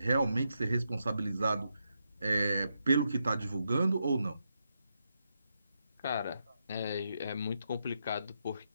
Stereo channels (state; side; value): inverted; both; correlation -0.83